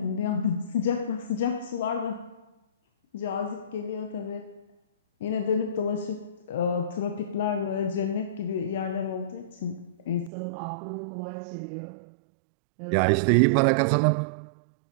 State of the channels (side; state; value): left; drops out; at 10.3 s